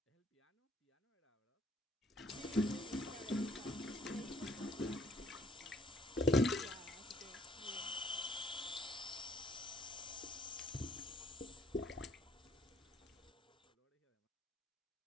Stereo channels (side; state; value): both; normal; correlation 0.63